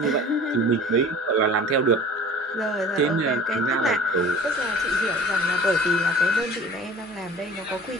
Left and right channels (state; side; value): normal; both; correlation 0.43